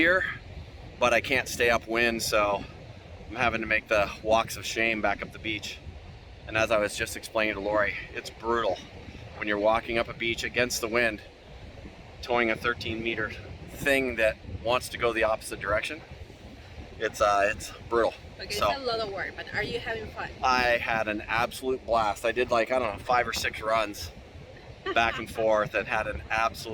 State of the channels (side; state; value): both; identical; correlation 1.00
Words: but I can't stay upwind, so I'm having to make the walks of shame back up the beach. And as I was just explaining to Lori, it's brutal when you're walking up a beach against the wind, towing a 13-meter thing that wants to go the opposite direction. It's brutal. Okay, So, it's a lot of work, but are you having fun? I had an absolute blast. I did like, I don't know, 5 or 6 runs back and forth and had an